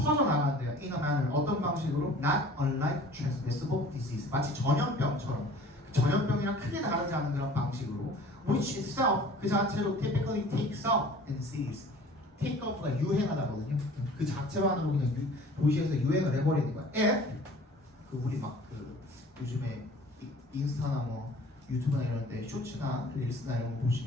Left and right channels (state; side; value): normal; both; correlation 0.47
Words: In a manner. 어떤 방식으로? Not unlike transmissible disease. 마치 전염병처럼. 전염병이랑 크게 다르지 않은 그런 방식으로. Which itself, 그 자체로 typically takes off in cities. take off가 유행하다거든요. 그 자체만으로 그냥 도시에서 유행을 해버리는 거야. If, 우리 막 요즘에 인스타나 뭐 유튜브나 이런 데 쇼츠나 릴스나 이런 거